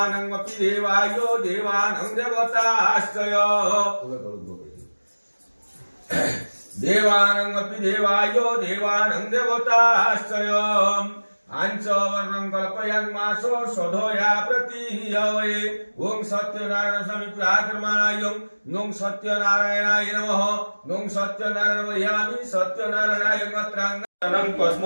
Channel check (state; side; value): inverted; both; correlation -1.00